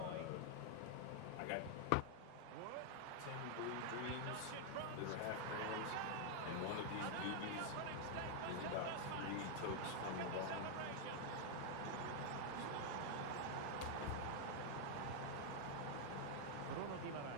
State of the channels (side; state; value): both; different; correlation 0.00